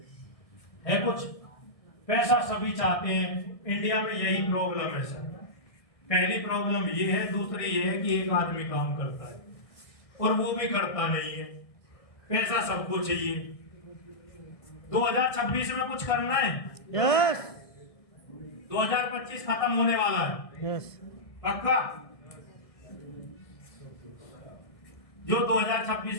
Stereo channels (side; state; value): right; late; 1.6 ms